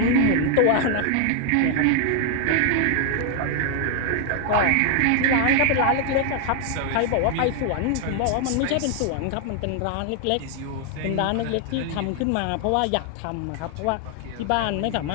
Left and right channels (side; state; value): both; different; correlation 0.00